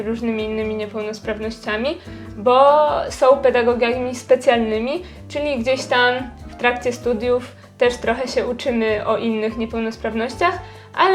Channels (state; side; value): identical; both; correlation 1.00